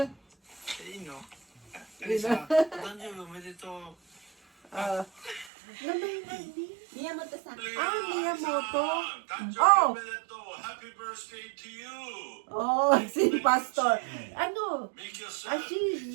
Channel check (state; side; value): drops out; left; at 5.5 s